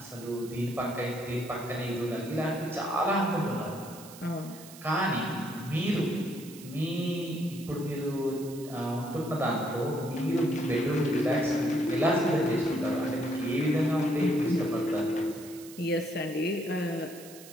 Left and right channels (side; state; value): right; noise; hiss, 17 dB below the sound